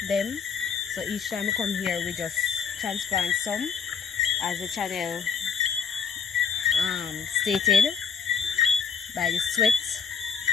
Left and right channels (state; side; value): quieter; right; 6.5 dB